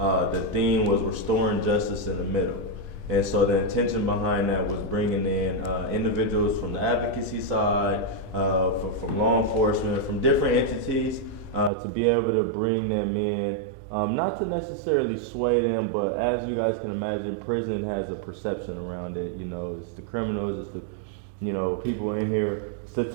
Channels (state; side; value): drops out; left; at 11.7 s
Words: theme was restoring justice in the middle. And so the intention behind that was bringing in individuals from the advocacy side, from law enforcement, from different entities, to be able to bring them in, not to necessarily sway them, but as you guys can imagine, prison has a perception around it. It's the criminals, it's the people in here.